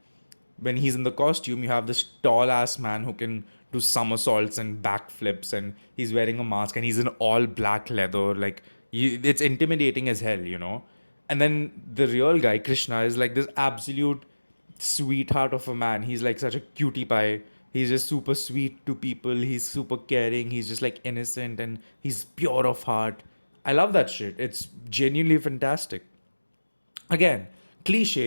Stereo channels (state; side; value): inverted; both; correlation -1.00